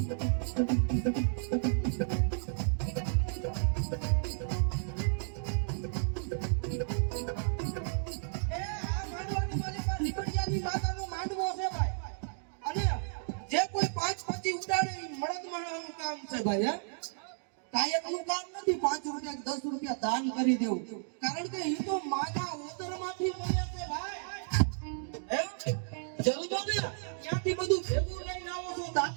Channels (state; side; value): silent; left; digital silence